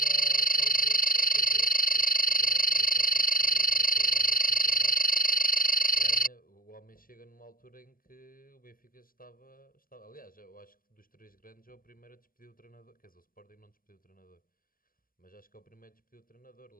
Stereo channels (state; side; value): late; right; 0.41 ms